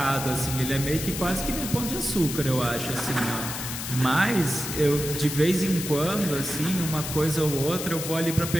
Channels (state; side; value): noise; left; hiss, 6 dB below the sound